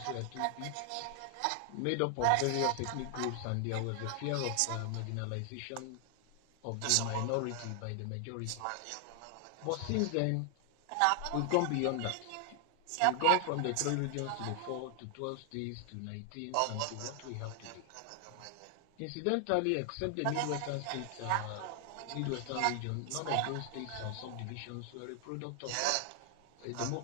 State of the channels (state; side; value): different; both; correlation 0.00